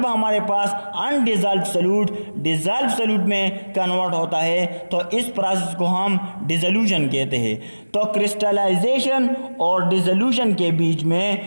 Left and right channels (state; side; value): inverted; both; correlation -1.00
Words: हमारे पास अनडिज़ॉल्व सॉल्यूट डिज़ॉल्व सॉल्यूट में कन्वर्ट होता है तो इस प्रोसेस को हम डिसोल्यूशन कहते हैं। तो क्रिस्टलाइजेशन और डिसोल्यूशन के बीच